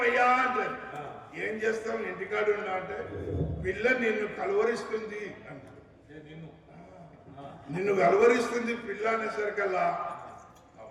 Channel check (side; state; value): both; identical; correlation 1.00